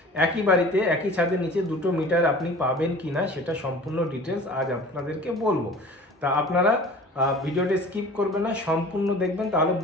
একই বাড়িতে একই ছাদের নিচে দুটো মিটার আপনি পাবেন কি না সেটা সম্পূর্ণ ডিটেলস আজ আপনাদেরকে বলবো। তা আপনারা ভিডিওটা স্কিপ করবেন না, সম্পূর্ণ দেখবেন, তাহলে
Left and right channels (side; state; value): both; normal; correlation 0.44